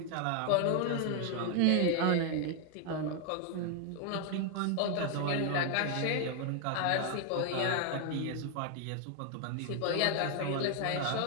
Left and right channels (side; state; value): both; different; correlation 0.00